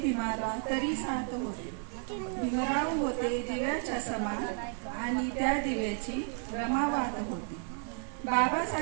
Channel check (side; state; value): left; silent; 56 dB below the other